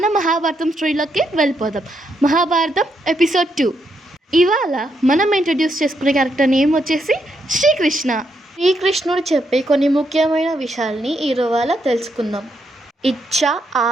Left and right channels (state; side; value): normal; both; correlation 0.79